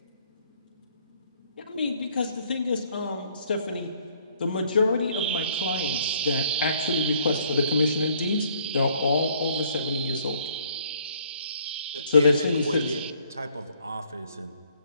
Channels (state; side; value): inverted; both; correlation -0.63